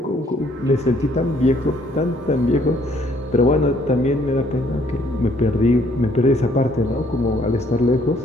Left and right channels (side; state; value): both; normal; correlation 0.64